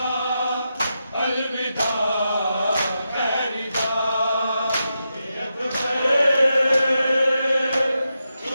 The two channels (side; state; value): both; inverted; correlation -0.87